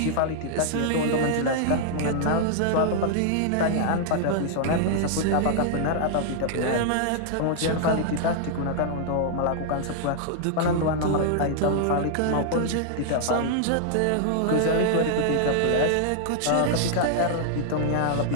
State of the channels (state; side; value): different; both; correlation -0.01